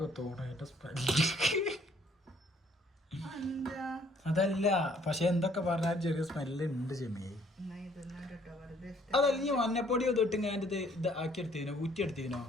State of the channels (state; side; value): normal; both; correlation 0.62